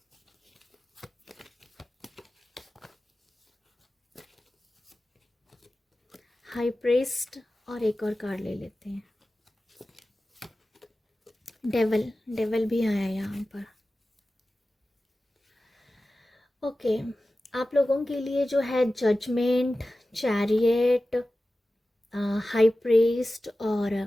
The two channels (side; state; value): both; normal; correlation 0.95